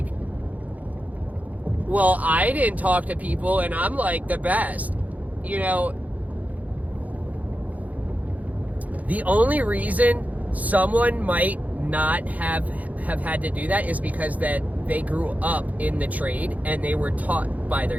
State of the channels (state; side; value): late; left; 0.075 ms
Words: well, I didn't talk to people and I'm like the best. You know, the only reason someone might not have had to do that is because that they grew up in the trade and they were taught by